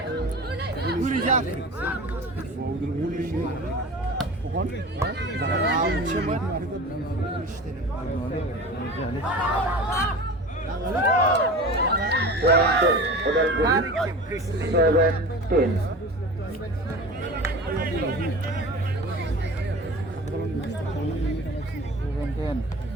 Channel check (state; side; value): normal; both; correlation 0.36